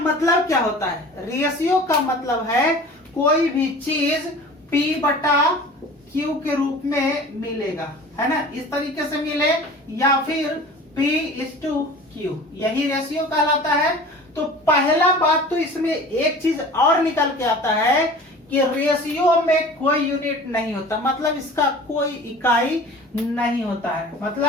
क्या होता है? रेशियो का मतलब है कोई भी चीज P बटा Q के रूप में मिलेगा, है ना। इस तरीके से मिले या फिर P/Q, यही रेशियो कहलाता है। तो पहला बात तो इसमें एक चीज और निकल के आता है कि रेशियो में कोई यूनिट नहीं होता, मतलब इसका कोई इकाई नहीं होता है।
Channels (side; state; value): both; normal; correlation 0.41